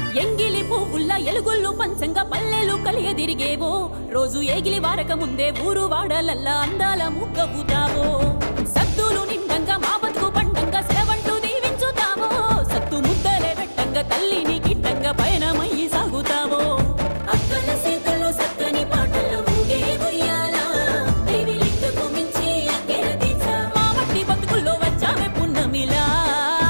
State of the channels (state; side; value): inverted; both; correlation -1.00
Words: ఎంగిలి పువ్వుల్ల ఎలుగుళ్ళు పంచంగా పల్లెలు కలియదిరిగేవో రోజు ఏగిలి వారక ముందే ఊరు వాడలల్లా అందాల ముగ్గవుతావో సద్దులు నిండంగా మా బతుకు పండంగా సెలవంటూ దీవించుతావో సత్తు ముద్దలే పెట్టంగా తల్లిని గిట్టంగా పయనమయ్యి సాగుతావో అక్కల సీతల్లో సక్కని పాటలు ఊగే ఉయ్యాల దేవి లింగకు మించి అక్కెర తీర్చా మా మట్టి బతుకుల్లో వచ్చావే పున్నమిలా